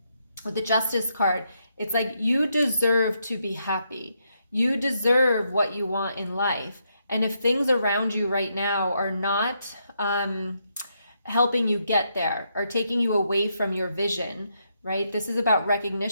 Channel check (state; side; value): inverted; both; correlation -0.79